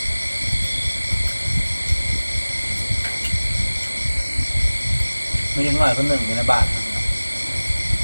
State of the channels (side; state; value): both; inverted; correlation -1.00